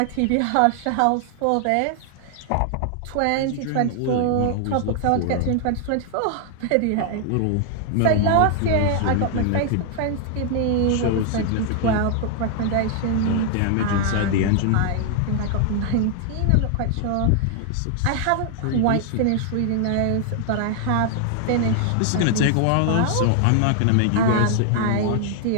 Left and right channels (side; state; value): both; different; correlation 0.00